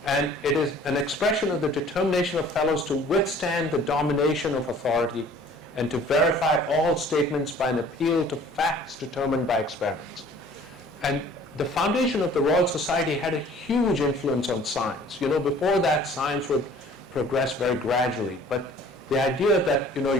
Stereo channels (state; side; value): normal; both; correlation 0.52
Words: And it is an expression of the determination of fellows to withstand the domination of authority and to verify all statements by an appeal to facts determined by experiments. And the foundation of the Royal Society had a huge influence on science. Before that, science would progress very gradually, but the idea that